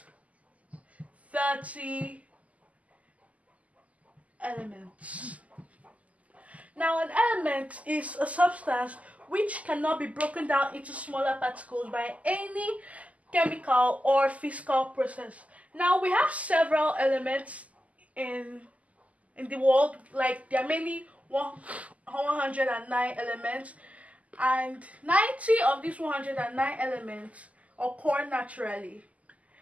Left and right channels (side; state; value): left; late; 0.071 ms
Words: 30 elements. Now, an element is a substance which cannot be broken down into smaller particles by any chemical or physical process. Now, we have several elements in the world, like there are many 109 elements, and 90 of these 109 elements occur naturally